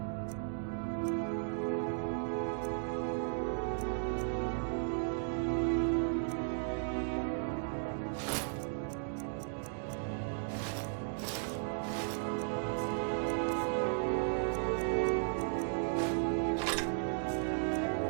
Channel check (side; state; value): left; silent; digital silence